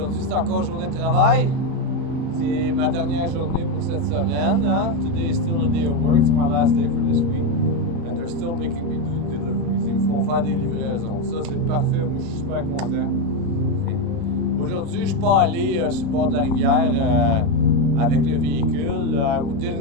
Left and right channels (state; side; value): late; left; 35 ms